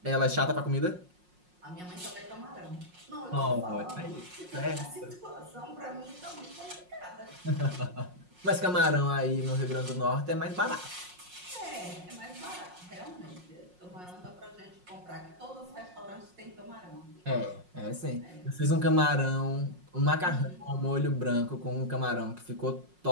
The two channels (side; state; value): left; late; 5.5 ms